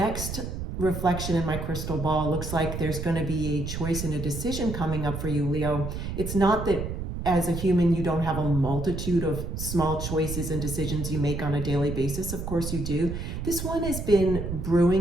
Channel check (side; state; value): right; noise; rumble, 5 dB below the sound